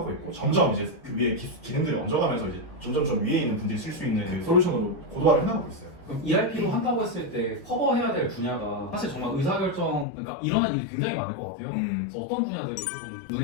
있고 점점 이제 그 위에 기능들이 얹어가면서 이제 점점 위에 있는 분들이 쓸 수 있는 그 솔루션으로 고도화를 해나가고 있어요. 그럼 ERP로 한다고 했을 때 커버해야 될 분야가 사실 정말 의사결정, 그러니까 일어난 일이 굉장히 많을 것 같아요. 그래서 어떤 분야들이 조금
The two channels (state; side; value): drops out; right; at 10.1 s